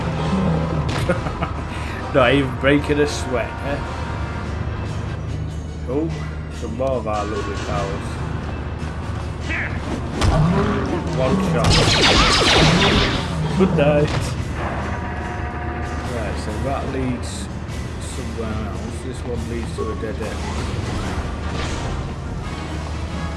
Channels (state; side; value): identical; both; correlation 1.00